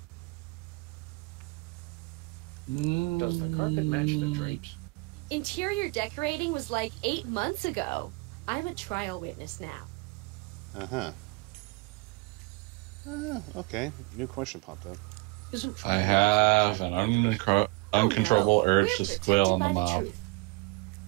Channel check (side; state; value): left; quieter; 26.8 dB